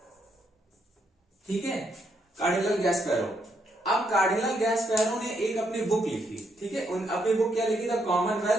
ठीक है, कार्डिनल गैस्पेरो। अब कार्डिनल गैस्पेरो ने एक अपनी बुक लिखी, ठीक है, अपनी बुक क्या लिखी, the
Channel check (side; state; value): both; normal; correlation 0.76